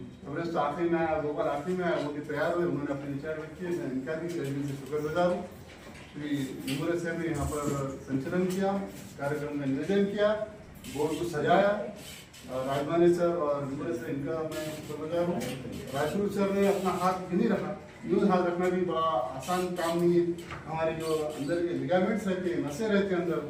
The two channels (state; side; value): identical; both; correlation 1.00